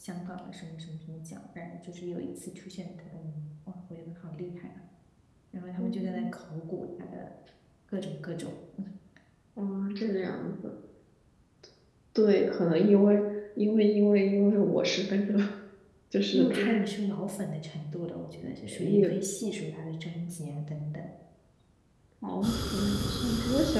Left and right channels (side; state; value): both; identical; correlation 1.00